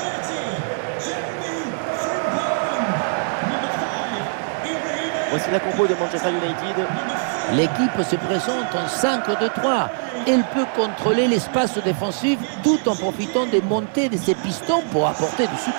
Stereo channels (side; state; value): left; silent; 56 dB below the other